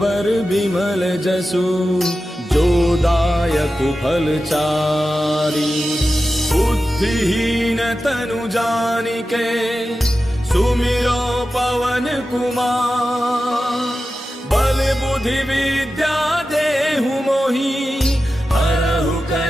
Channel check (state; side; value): normal; both; correlation 0.93